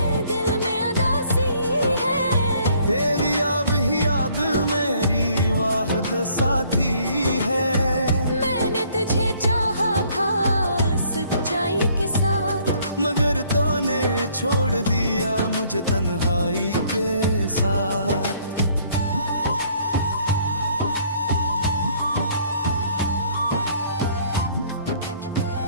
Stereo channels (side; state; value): both; inverted; correlation -0.62